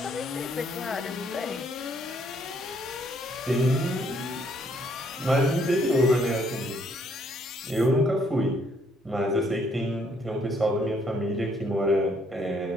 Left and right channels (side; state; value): both; normal; correlation 0.68